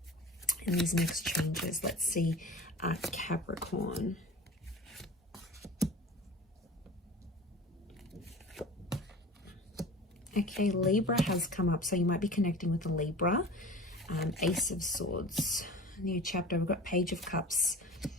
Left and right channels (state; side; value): normal; both; correlation 0.38